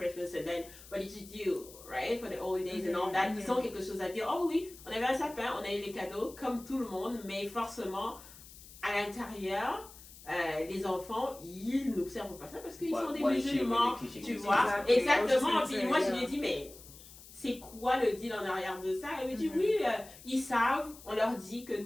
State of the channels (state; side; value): noise; left; hiss, 19 dB below the sound